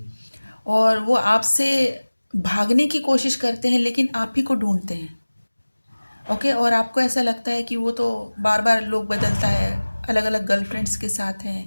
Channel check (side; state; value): both; inverted; correlation -1.00